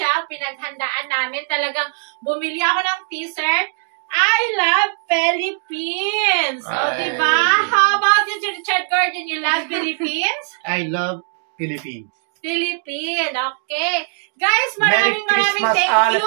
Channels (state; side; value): silent; left; 62 dB below the other